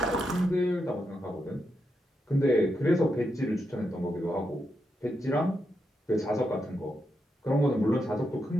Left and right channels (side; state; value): both; normal; correlation 0.84